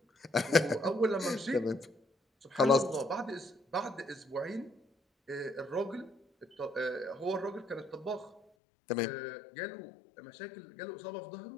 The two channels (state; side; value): drops out; right; at 8.4 s